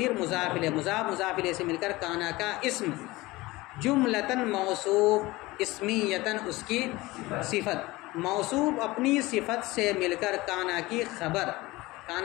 مضاف الیہ، مضاف مضاف الیہ سے مل کر کانا کا اسم. جملتاً موصوف، اسمیتاً اس کی صفت. موصوف اپنی صفت سے مل کر کانا کی خبر.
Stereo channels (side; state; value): right; quieter; 20.4 dB